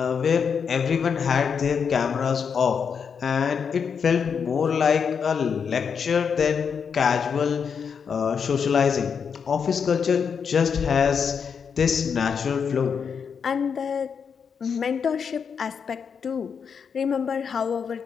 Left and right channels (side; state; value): right; quieter; 6.5 dB